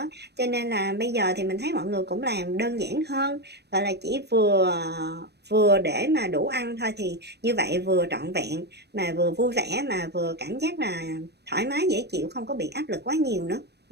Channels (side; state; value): left; late; 0.48 ms